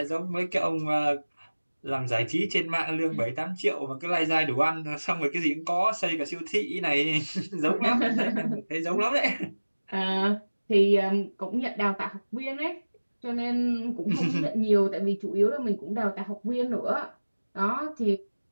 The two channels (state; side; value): inverted; both; correlation -1.00